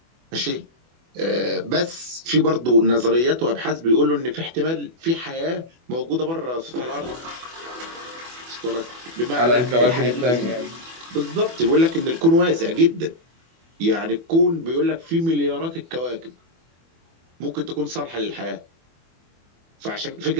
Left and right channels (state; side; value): late; left; 24 ms